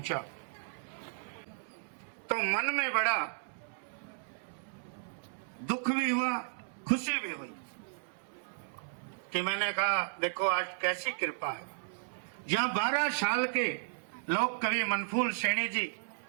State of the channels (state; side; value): silent; left; 55 dB below the other